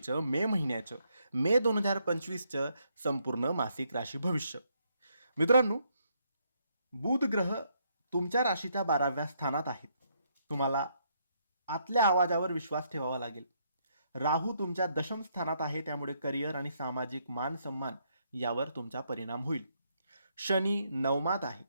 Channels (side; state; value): both; inverted; correlation -0.74